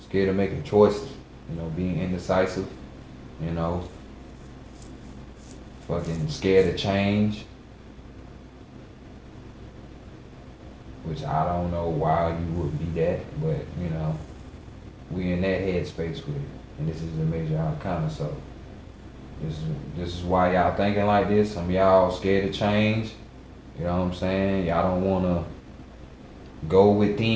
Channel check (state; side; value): identical; both; correlation 1.00